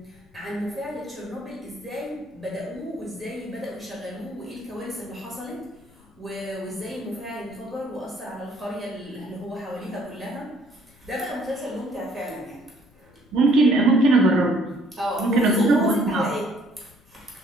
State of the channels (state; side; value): noise; left; rumble, 29 dB below the sound